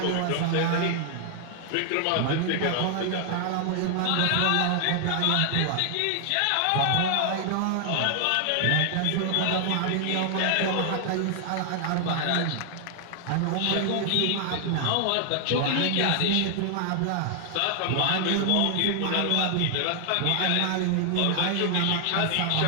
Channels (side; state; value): both; different; correlation 0.00